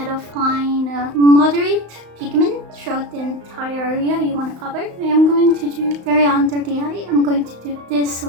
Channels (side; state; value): left; late; 35 ms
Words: of applying a moderate pigment throughout the entire area you want to cover, I am going to do very under the eye. I'm going to do this